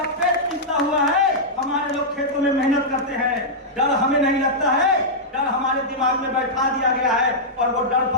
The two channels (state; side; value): normal; both; correlation -0.09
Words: पेट पीता हुआ है, हमारे लोग खेतों में मेहनत करते हैं। डर हमें नहीं लगता है, डर हमारे दिमाग में बैठा दिया गया है। और वो डर